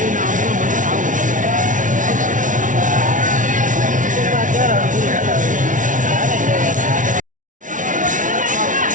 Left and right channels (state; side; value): late; left; 0.38 ms